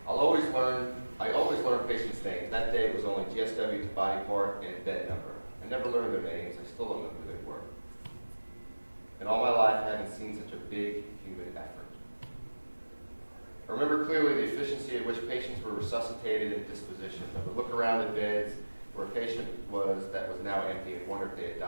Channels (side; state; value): both; inverted; correlation -1.00